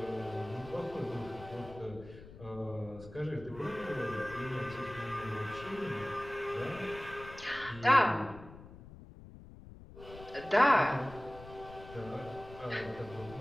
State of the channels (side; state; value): left; noise; rumble, 16 dB below the sound